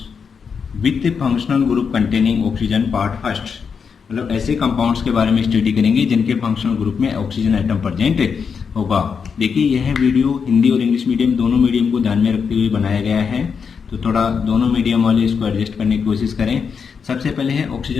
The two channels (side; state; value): right; quieter; 6.1 dB